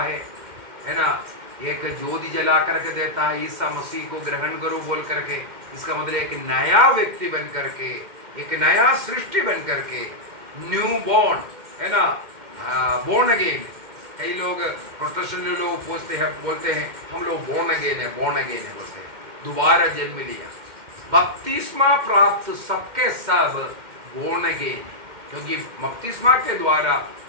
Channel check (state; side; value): late; left; 2.1 ms